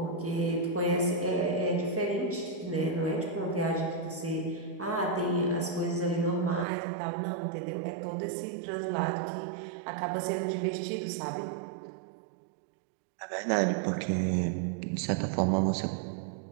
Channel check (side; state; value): left; drops out; at 6.7 s